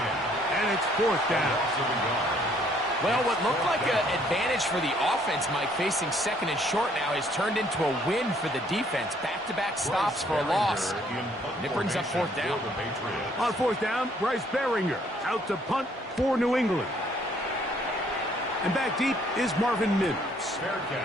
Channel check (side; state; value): both; normal; correlation 0.64